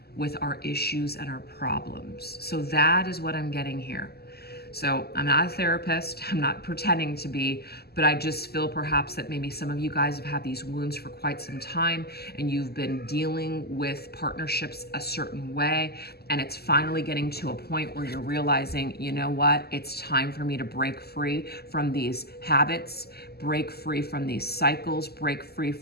with our issues and our problems. So that is what I'm getting here. So I'm not a therapist, I'm not pretending to be, but I just feel perhaps that maybe some of you guys have had these wounds for quite some time and you've been dealing with partnerships a certain way, and it's finally getting to a point where you're realizing, you know what, it's time for me to break free from these habits, break free from these cycles, break free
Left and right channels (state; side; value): late; right; 0.46 ms